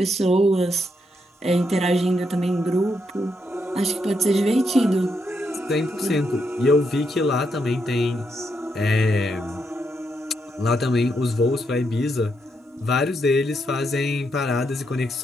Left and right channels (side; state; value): both; normal; correlation 0.79